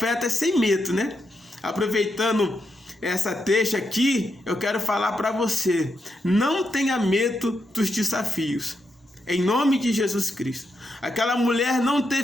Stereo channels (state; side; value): normal; both; correlation 0.83